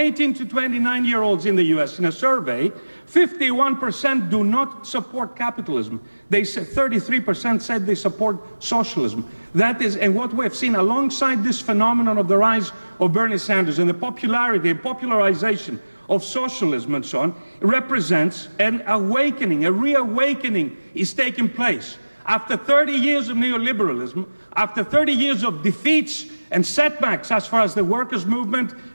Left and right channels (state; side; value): inverted; both; correlation -1.00